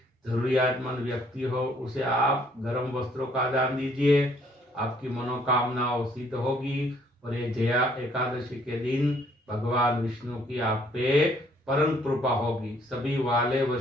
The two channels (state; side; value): normal; both; correlation 0.64